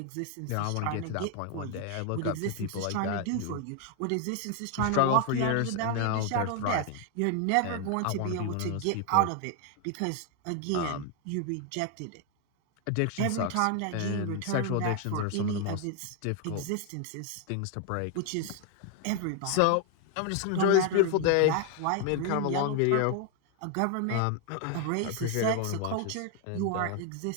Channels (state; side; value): different; both; correlation 0.00